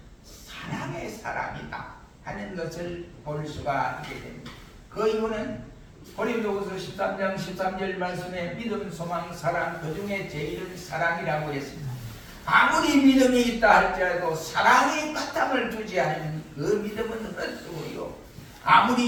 사랑의 사람이다 하는 것을 볼 수가 있게 됩니다. 그 이유는 고린도후서 13장 13절 말씀에 믿음, 소망, 사랑 그 중에 제일은 사랑이라고 했습니다. 아무리 믿음이 있다 할지라도 사랑의 바탕을 두지 않으면 그 믿음은 헛수고요.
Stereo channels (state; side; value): identical; both; correlation 1.00